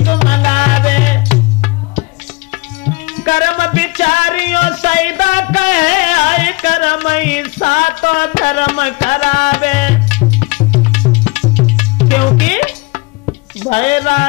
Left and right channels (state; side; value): quieter; right; 25.0 dB